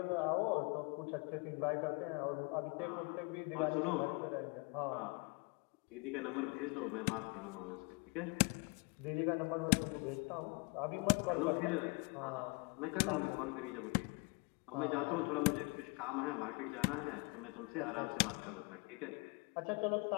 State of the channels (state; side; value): quieter; right; 30.8 dB